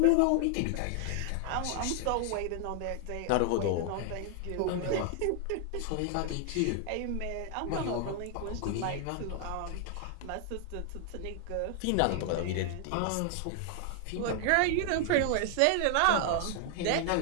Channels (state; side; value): different; both; correlation 0.00